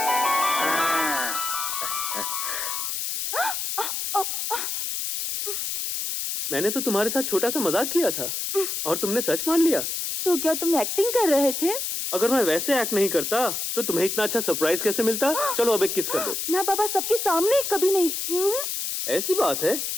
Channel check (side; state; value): left; noise; hiss, 3 dB below the sound